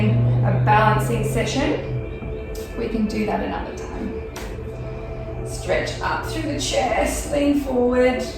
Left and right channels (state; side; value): identical; both; correlation 1.00